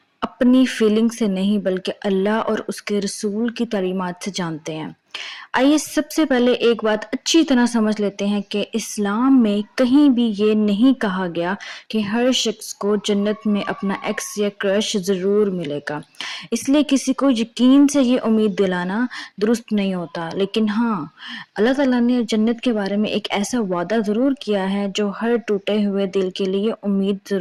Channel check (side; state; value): both; identical; correlation 1.00